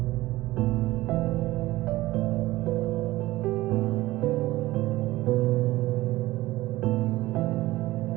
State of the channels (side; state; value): left; quieter; 17.9 dB